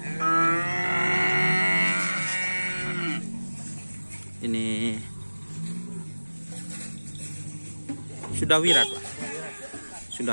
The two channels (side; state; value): both; inverted; correlation -1.00